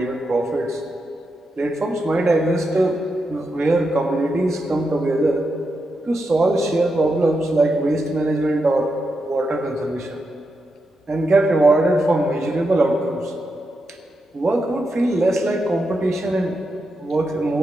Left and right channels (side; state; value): both; normal; correlation 0.86